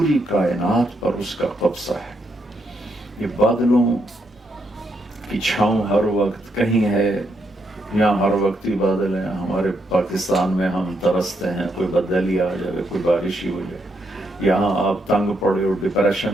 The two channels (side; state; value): both; normal; correlation 0.78